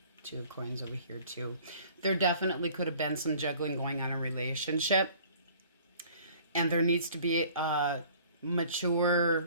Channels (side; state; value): both; inverted; correlation -0.52